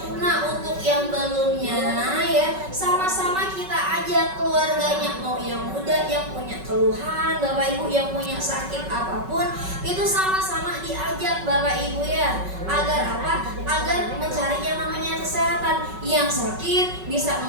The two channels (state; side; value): late; left; 5.3 ms